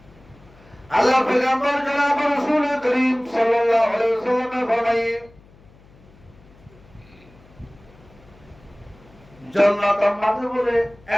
আল্লাহ পয়গম্বর জনাব রাসূল করিম সাল্লাল্লাহু আলাইহি ওয়াসাল্লাম ফরমায়ে, জান্নাতের মাঝে বলে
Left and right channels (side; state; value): left; noise; hum, 26 dB below the sound